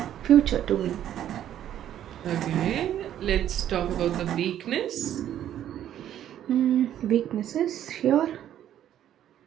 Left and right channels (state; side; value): quieter; left; 11.1 dB